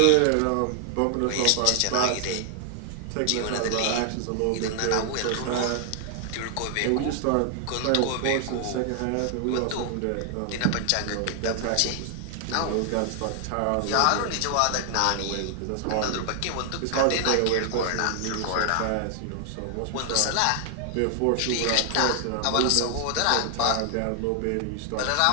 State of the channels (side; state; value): both; different; correlation 0.00